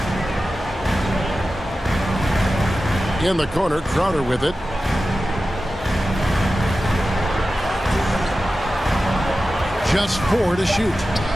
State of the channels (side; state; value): both; normal; correlation 0.94